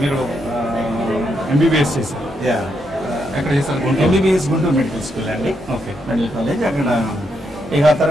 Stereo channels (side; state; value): both; normal; correlation 0.80